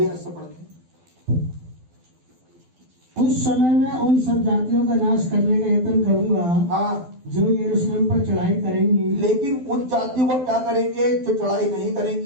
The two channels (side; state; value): left; late; 12 ms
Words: ऐसा पढ़ते हैं। उस समय मैं उन सब जातियों का नाश करने का यत्न करूंगा, हाँ, जो यरूशलेम पर चढ़ाई करेंगी। लेकिन उन जातियों को क्या करेंगे जो चढ़ाई नहीं